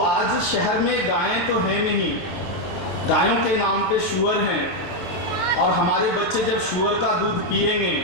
शहर में गायें तो है नहीं, गायों के नाम पे शुअर हैं और हमारे बच्चे जब शुअर का दूध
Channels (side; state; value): right; late; 23 ms